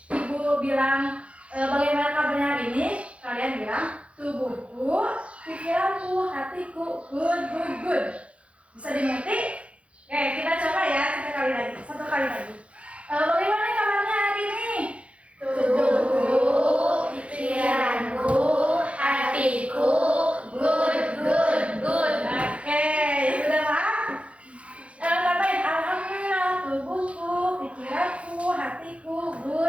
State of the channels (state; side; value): late; left; 0.062 ms